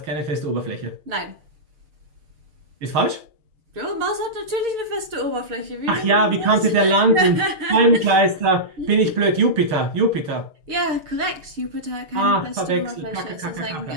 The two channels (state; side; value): late; left; 6.4 ms